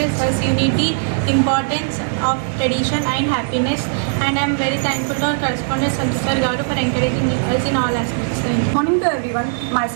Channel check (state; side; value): silent; left; 61 dB below the other